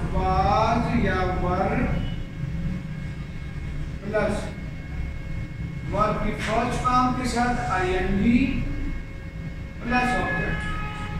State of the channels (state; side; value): identical; both; correlation 1.00